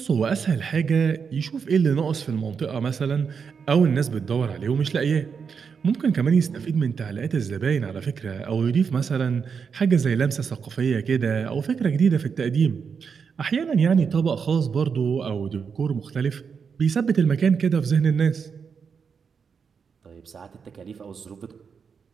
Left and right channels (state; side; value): quieter; left; 6.2 dB